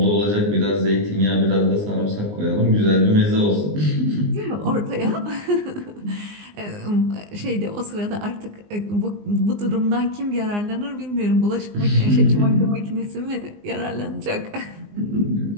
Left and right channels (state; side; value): late; left; 19 ms